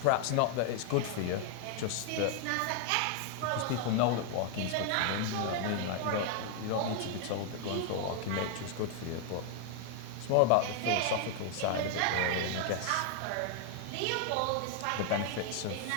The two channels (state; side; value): different; both; correlation 0.00